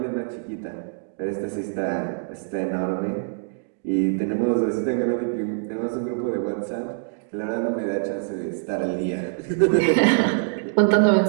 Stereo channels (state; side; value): silent; left; digital silence